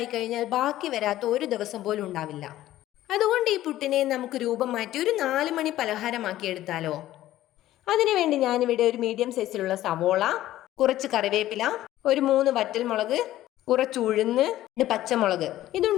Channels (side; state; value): right; quieter; 14.3 dB